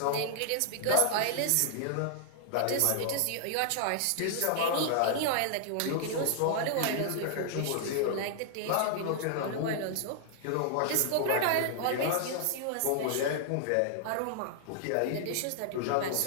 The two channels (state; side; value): different; both; correlation -0.01